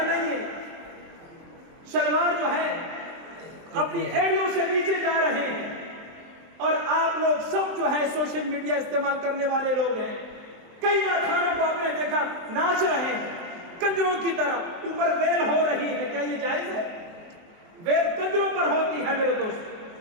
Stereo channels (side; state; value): left; late; 23 ms